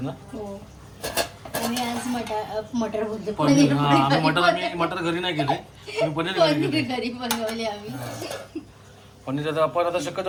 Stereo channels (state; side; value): identical; both; correlation 1.00